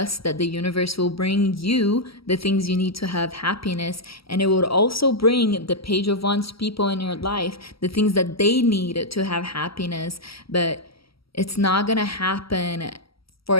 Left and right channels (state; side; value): late; right; 0.75 ms